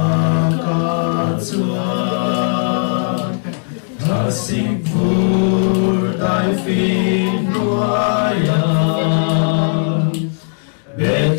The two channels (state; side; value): silent; right; 68 dB below the other